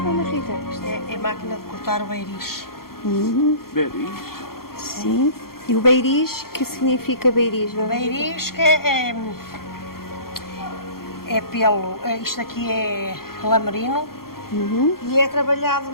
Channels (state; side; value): late; right; 0.93 ms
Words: Rita? Isto é máquina de cortar o beiriz. Beris? Sim. E o beiriz, que significa beiriz? Dona Rita? Beiriz que é pelo. Isto aqui é lamerino e é trabalhado